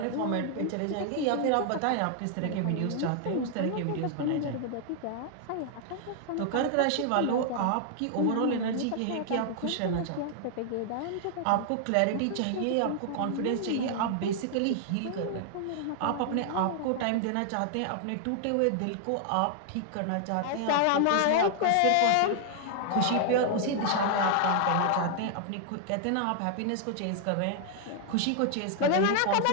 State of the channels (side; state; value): both; different; correlation 0.00